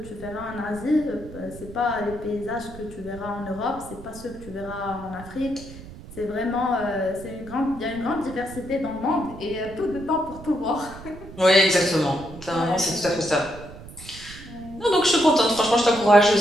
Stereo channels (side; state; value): right; noise; rumble, 15 dB below the sound